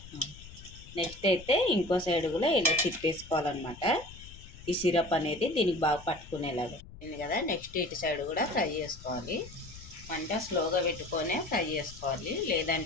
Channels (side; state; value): left; noise; rumble, 17 dB below the sound